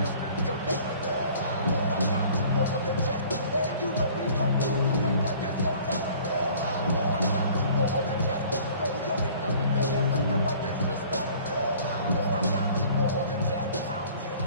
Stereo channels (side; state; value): both; inverted; correlation -0.50